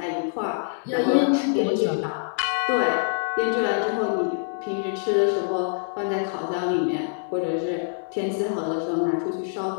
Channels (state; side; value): silent; right; 62 dB below the other